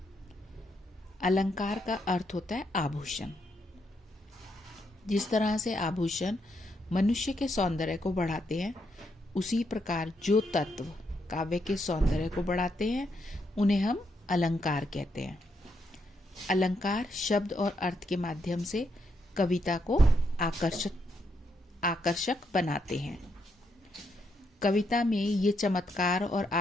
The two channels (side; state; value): both; normal; correlation 0.78